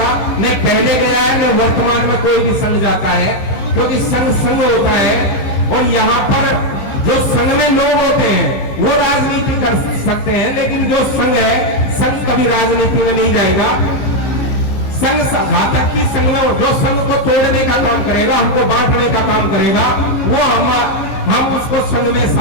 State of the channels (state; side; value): late; right; 15 ms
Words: न पहले गया है न वर्तमान में कोई भी संघ जाता है, क्योंकि संघ संघ होता है। और यहाँ पर जो संघ में लोग होते हैं वो राजनीति कर सकते हैं, लेकिन जो संघ है, संघ कभी राजनीति में नहीं जाएगा। संघ घातक की संघ में जो संघ को तोड़ने का काम करेगा, हमको बांटने का काम करेगा, वो हम संघ में